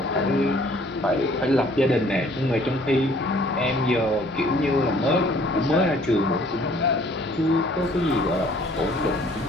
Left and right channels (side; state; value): both; normal; correlation 0.57